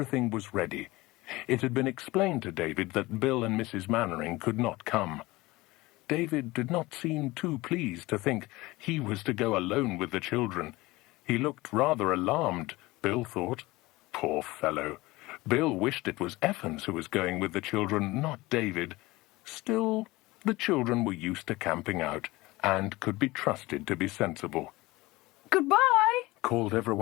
was ready. It had been explained to David that Bill and Mrs. Mannering could not come. David did not seem too pleased to think he was to go alone with the children. He looked rather alarmed, Bill thought. Poor fellow. Bill wished it was Evans who was going with the children, not David. Still, the children were used to camping out, and could be trusted to be sensible. "Goodbye," called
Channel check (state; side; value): quieter; right; 20.5 dB